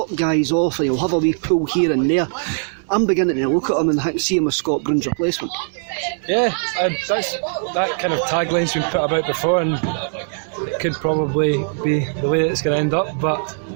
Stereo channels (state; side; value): silent; left; digital silence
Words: guys off and he'll have a wee pull here and there. I'm beginning to look at him and see him as Scott Brown's replacement. Yeah, that kind of tagline's been put about before, and it could probably be the way it's going to end up. But